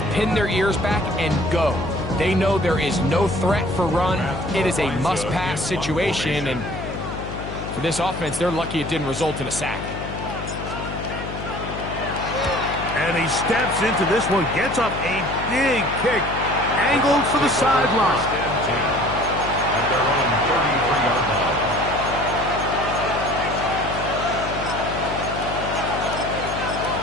pin their ears back and go. They know there is no threat for run. It is a must-pass situation. And for this offense, they're lucky it didn't result in a sack. And he steps into this one, gets up a big kick, angled for the sideline. At their own 33-yard line.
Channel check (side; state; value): left; noise; hum, 8 dB below the sound